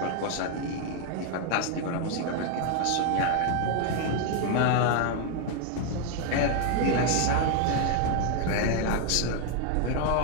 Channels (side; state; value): both; different; correlation 0.00